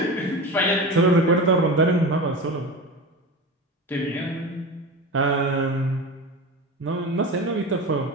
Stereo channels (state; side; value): normal; both; correlation 0.27